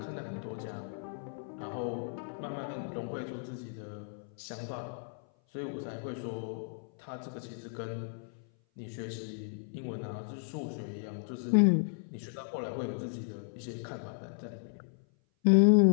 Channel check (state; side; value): silent; right; 55 dB below the other